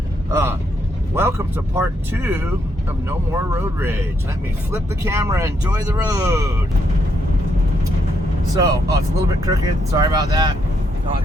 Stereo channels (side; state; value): both; normal; correlation 0.76